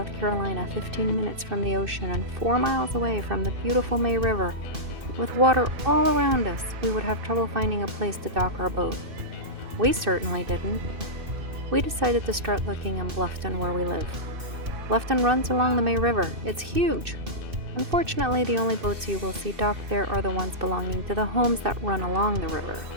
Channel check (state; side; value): late; left; 2.6 ms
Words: Carolina, 15 minutes from the ocean and 4 miles away from the beautiful May River, with water all around us, we would have trouble finding a place to dock our boat? We certainly didn't. We decided to start looking in Bluffton, where we live. Bluffton runs along the May River. It's huge. Unfortunately, the only boats you will see docked there are the ones belonging to the homes that run along the river.